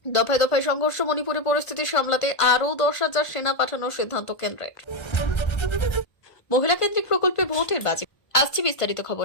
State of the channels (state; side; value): late; right; 1.5 ms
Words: দফায় দফায় সংঘর্ষ, মণিপুরে পরিস্থিতি সামলাতে আরও 10,000 সেনা পাঠানোর সিদ্ধান্ত কেন্দ্রের। মহিলা কেন্দ্রিক প্রকল্পে ভোটের বাজি। আসছে বিস্তারিত